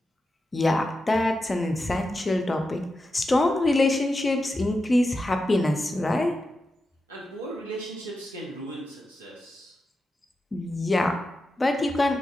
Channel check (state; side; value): normal; both; correlation 0.89